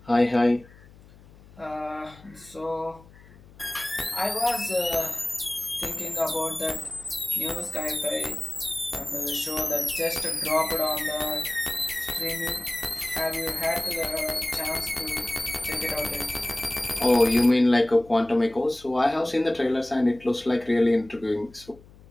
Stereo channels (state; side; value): noise; left; hum, 23 dB below the sound